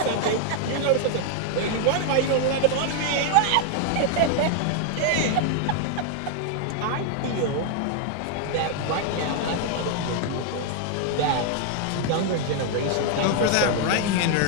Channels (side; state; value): both; different; correlation 0.00